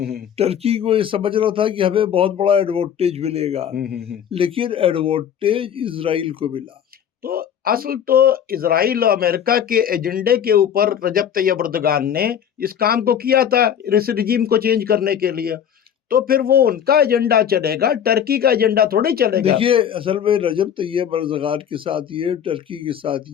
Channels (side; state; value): right; quieter; 8.9 dB